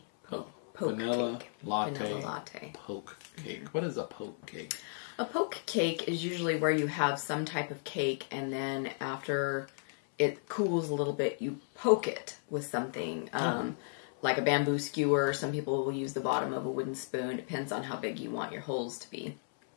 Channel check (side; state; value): right; silent; 55 dB below the other